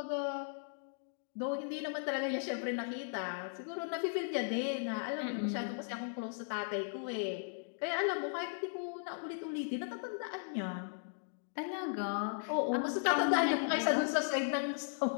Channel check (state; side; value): silent; right; digital silence